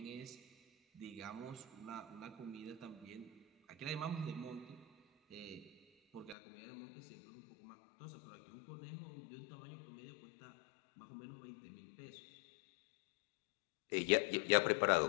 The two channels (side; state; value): right; drops out; at 6.4 s